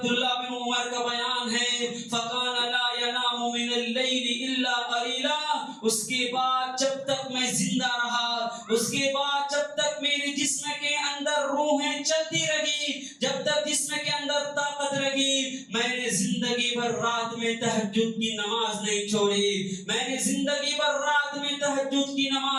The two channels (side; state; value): both; identical; correlation 1.00